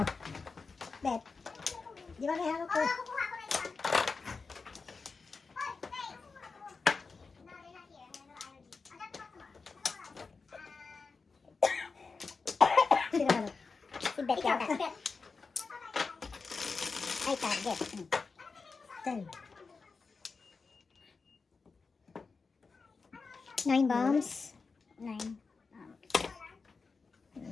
Bet. Di ba may hawak ko? Sino ka ba? Si Bet yata. Ay, target. 10. 9 bombs. 9.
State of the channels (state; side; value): quieter; right; 4.6 dB